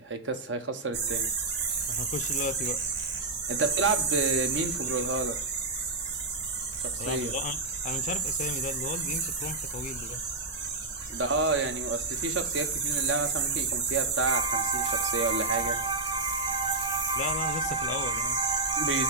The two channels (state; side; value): quieter; left; 3.3 dB